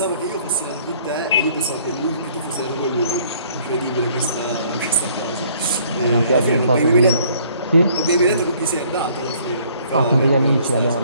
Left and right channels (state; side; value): inverted; both; correlation -0.60